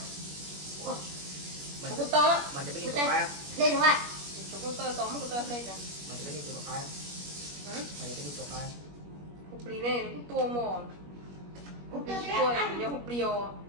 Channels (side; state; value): left; late; 21 ms